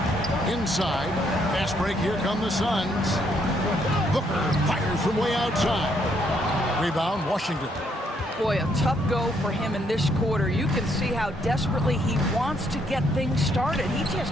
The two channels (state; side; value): normal; both; correlation 0.71